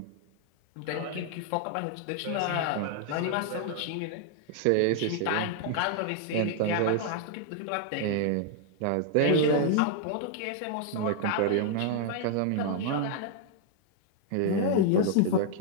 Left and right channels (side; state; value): both; different; correlation 0.00